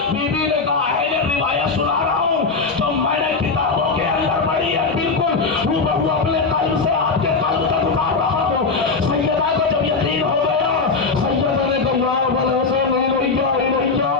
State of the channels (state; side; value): quieter; right; 4.4 dB